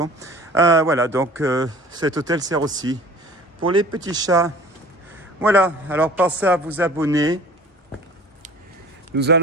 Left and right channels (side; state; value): both; normal; correlation 0.45